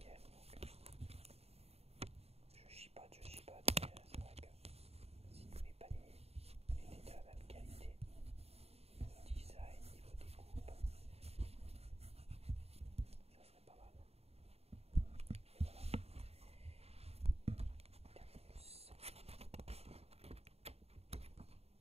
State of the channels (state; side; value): late; left; 0.30 ms